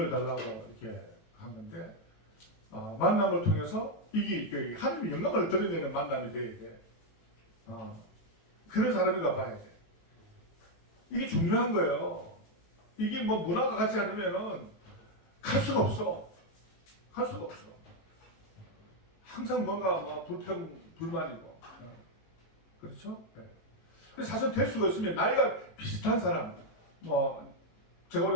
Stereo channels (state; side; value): late; right; 18 ms